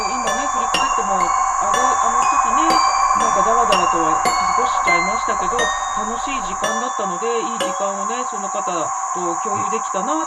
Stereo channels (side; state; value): both; identical; correlation 1.00